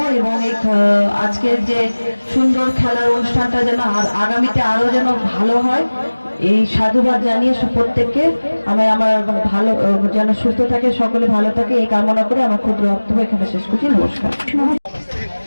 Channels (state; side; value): inverted; both; correlation -1.00